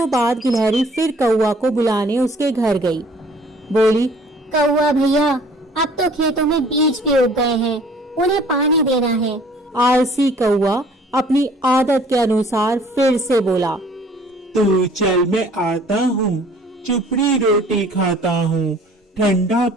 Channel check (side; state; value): both; normal; correlation 0.54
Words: बाद गिलहरी फिर कौवा को बुलाने उसके घर गई। बोली, कौवा भैया, अब तो खेतों में बीज भी उग गए हैं, उन्हें पानी देना है। आलसी कौवा अपनी आदत के अनुसार फिर से बोला, तू चल, मैं आता हूँ, चुपड़ी रोटी खाता हूँ, ठंडा